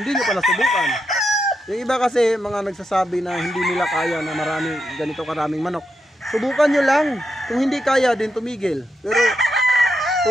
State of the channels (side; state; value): both; normal; correlation 0.84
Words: niyo pala subukan. Yung iba kasi mga nagsasabi na hindi nila kaya na ganito karaming manok. Subukan niyo lang. Kung hindi kaya din tumigil. Pero